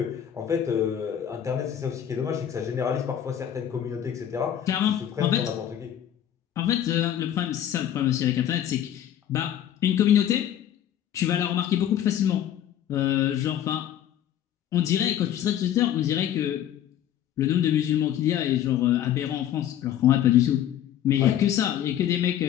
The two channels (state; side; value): quieter; right; 10.7 dB